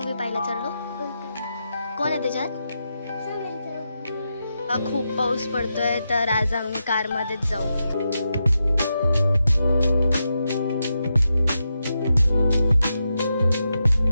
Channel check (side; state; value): both; inverted; correlation -0.87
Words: पाहायला चाललो? कोण आहे त्याच्यात? खूप पाऊस पडतोय तर आज आम्ही कार मध्येच जाऊ।